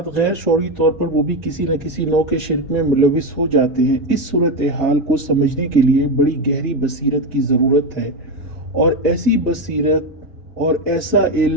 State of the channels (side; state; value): both; normal; correlation 0.12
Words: غیر شعوری طور پر وہ بھی کسی نہ کسی نوع کے شرک میں ملوث ہو جاتے ہیں۔ اس صورتحال کو سمجھنے کے لیے بڑی گہری بصیرت کی ضرورت ہے، اور ایسی بصیرت اور ایسا